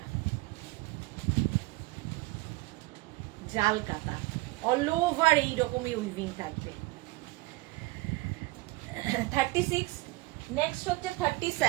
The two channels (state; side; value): quieter; left; 21.8 dB